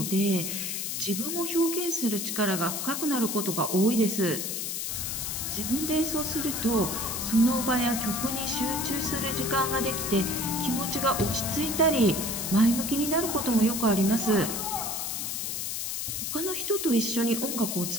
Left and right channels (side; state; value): left; noise; hiss, 3 dB below the sound